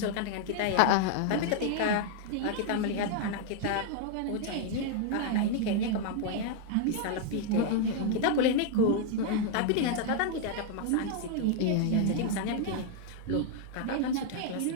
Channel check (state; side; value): different; both; correlation 0.00